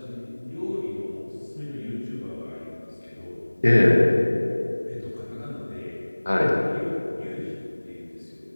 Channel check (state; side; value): inverted; both; correlation -1.00